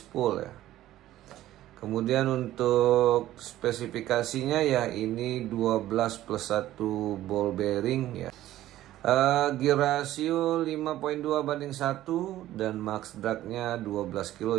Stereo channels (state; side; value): quieter; left; 14.1 dB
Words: ya. Kemudian untuk spesifikasinya ya ini 12+1 ball bearing ya. Gear ratio 5.2/1 dan max dragnya 12